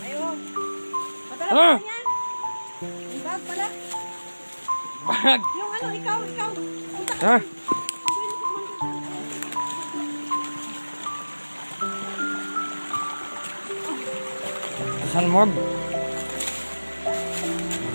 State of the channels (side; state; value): both; inverted; correlation -1.00